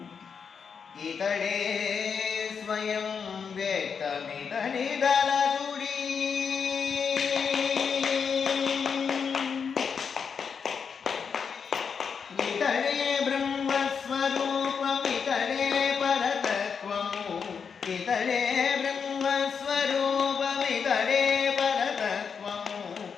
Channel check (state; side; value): quieter; right; 6.3 dB